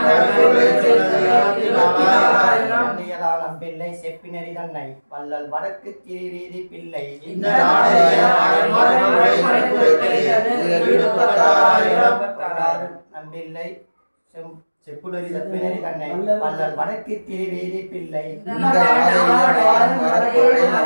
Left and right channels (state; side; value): inverted; both; correlation -1.00